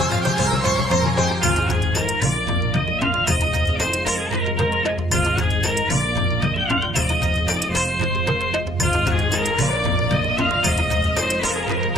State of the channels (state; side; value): normal; both; correlation 0.67